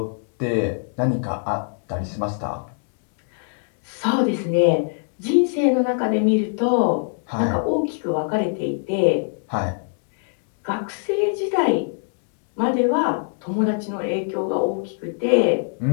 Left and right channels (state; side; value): silent; right; digital silence